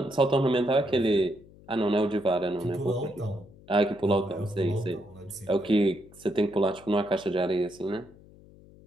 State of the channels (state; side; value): noise; left; hum, 23 dB below the sound